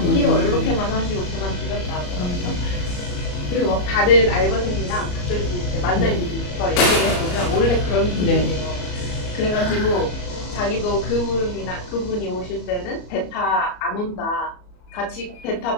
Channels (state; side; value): late; right; 34 ms